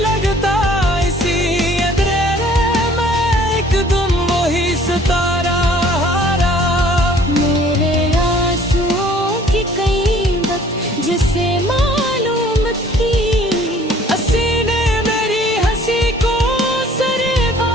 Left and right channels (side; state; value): both; normal; correlation 0.55